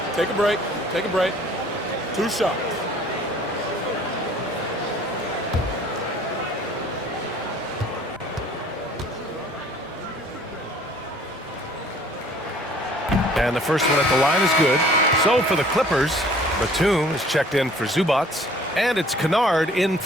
Take a break. Take a break. 2 shots. And the first one at the line is good. So for the Clippers, Batum is checked in for Zubats, and it's Kennard in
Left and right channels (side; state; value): both; normal; correlation 0.53